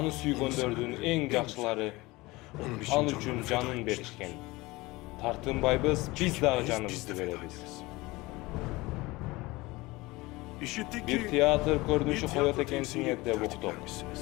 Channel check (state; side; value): quieter; right; 21.5 dB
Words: süygöndördüğün en jakşılary an üçün canın berişken. Tartınbayбыз, biz dağı canımızды berебиz. Bir teatr көрүнүшү коёт экенсиңер деп уктук.